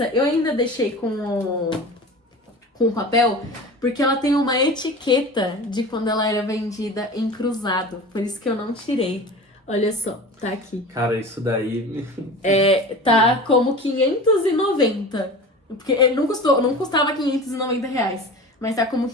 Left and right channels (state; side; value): normal; both; correlation 0.35